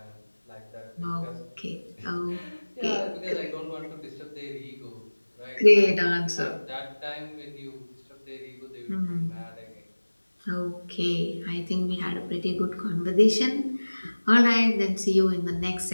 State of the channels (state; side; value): inverted; both; correlation -1.00